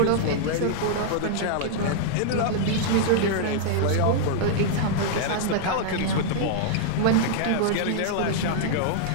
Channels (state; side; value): different; both; correlation -0.01